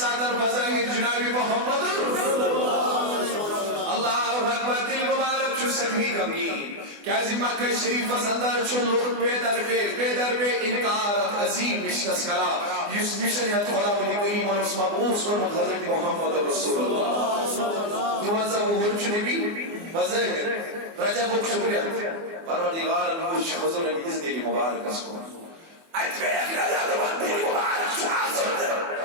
بزرگ جناب محمد اللہ اکبر دل مبارک چھو سکھی غمگین کیازی مکہ شریف صدر چھو لوگ پیدر پہ انکار عظیم مشنس کرا یس مشن یا خدا ولی کریم اور اس مبعوث کو حضرت محمد رسول اللہ تو منظر مدھر چھو نبی بزرگ رجب و شکریہ پروردگار نوش حضور نبیز دل مبارک اس کو اتبیق ندارمان دل مبارک چھو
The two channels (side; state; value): left; late; 24 ms